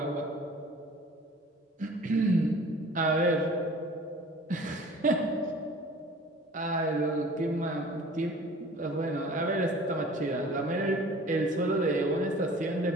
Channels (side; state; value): both; normal; correlation 0.46